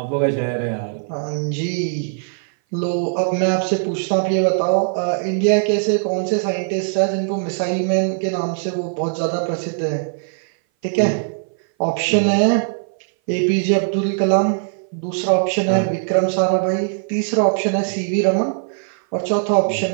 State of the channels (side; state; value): left; silent; 58 dB below the other